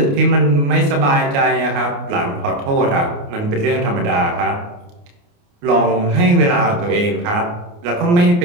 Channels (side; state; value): left; late; 29 ms